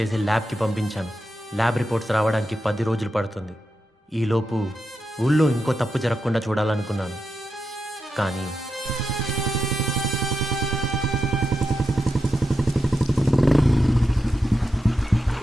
ల్యాబ్కి పంపించాను. ల్యాబ్ రిపోర్ట్స్ రావడానికి 10 రోజులు పడుతుంది. ఈలోపు ఊళ్ళో ఇంకో తప్పు జరగకుండా చూడాలనుకున్నాను. కానీ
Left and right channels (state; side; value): normal; both; correlation 0.88